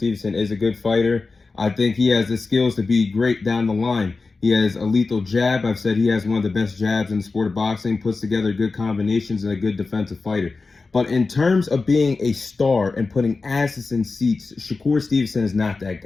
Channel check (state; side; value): quieter; right; 4.0 dB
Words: is a good fighter. I think he has the skills to be great down the line. He has a lethal jab. I've said he has one of the best jabs in the sport of boxing, puts together good combinations, and a good defensive fighter. But in terms of being a star and putting asses in seats, Shakur Stevenson is not that